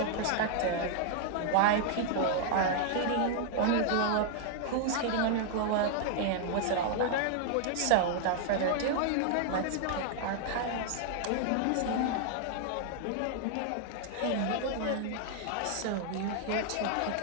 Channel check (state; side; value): different; both; correlation 0.00